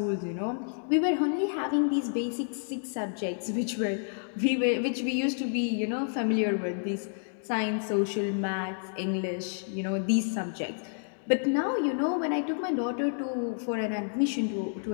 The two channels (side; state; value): right; silent; digital silence